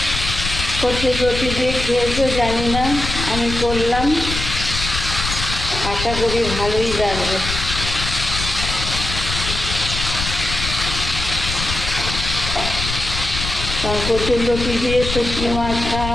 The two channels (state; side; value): noise; left; rumble, 5 dB below the sound